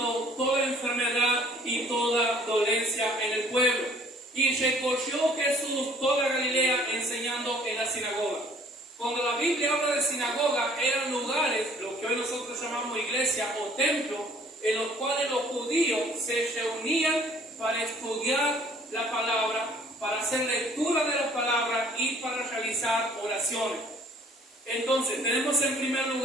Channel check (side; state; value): both; normal; correlation 0.56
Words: toda enfermedad y toda dolencia en el pueblo. Y recorrió Jesús toda Galilea, enseñando en la sinagoga. Cuando la Biblia habla de sinagoga, eran lugares, lo que hoy nosotros llamamos iglesia o templo, en los cuales los judíos se reunían para estudiar la palabra, para hacer lectura de la palabra y para realizar oraciones. Entonces, tenemos en primer